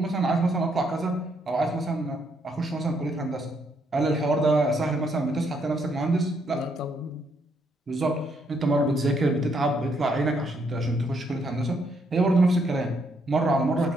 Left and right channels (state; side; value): normal; both; correlation 0.73